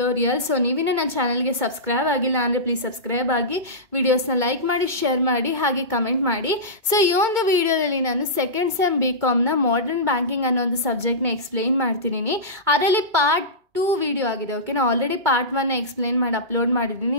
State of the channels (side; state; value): left; late; 2.2 ms